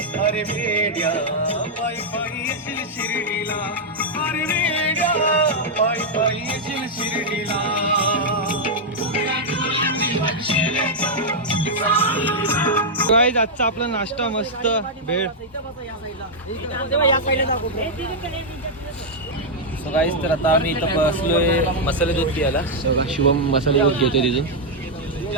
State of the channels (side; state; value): both; normal; correlation -0.03